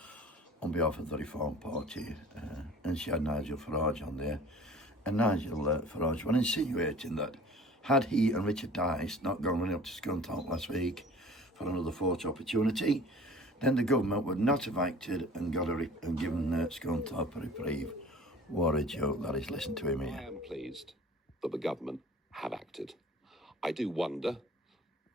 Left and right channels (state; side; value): normal; both; correlation 0.45